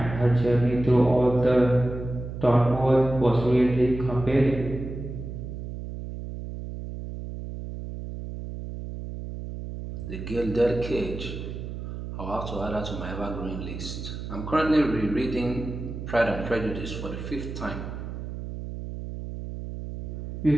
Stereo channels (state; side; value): noise; right; hum, 8 dB below the sound